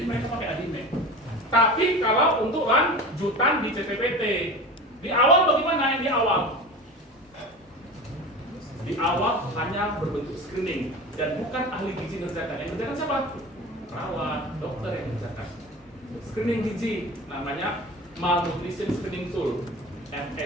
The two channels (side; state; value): both; normal; correlation 0.33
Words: mereka pakai ADIME. Tapi kalau untuk lanjutan di CPPT, di awal bagaimana? Di awal hanya berbentuk screening dan bukan ahli gizi ngerjakan. Yang ngerjakan siapa? Perawat, dokter yang ngerjakan. Screening gizi namanya Malnutrition Screening Tool,